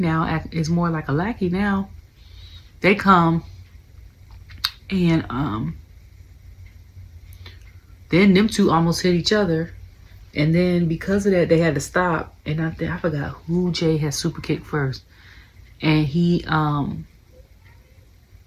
is more like a lackey now. They come and then them two almost hit each other. And then because of that, they had to stop. And I forgot who Jay had super kicked first. And he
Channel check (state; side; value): identical; both; correlation 1.00